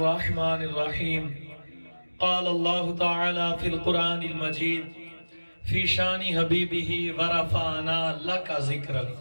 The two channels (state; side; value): inverted; both; correlation -1.00